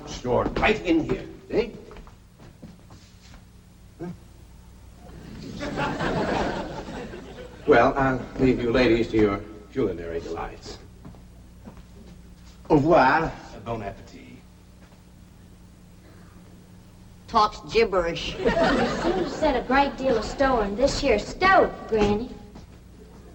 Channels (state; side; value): identical; both; correlation 1.00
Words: stored right in here. See? Huh? Well, I'll leave you ladies to your culinary delights. Au revoir. Bon appetit. Talks gibberish. You seem to set a great deal of store in this here stove, Granny.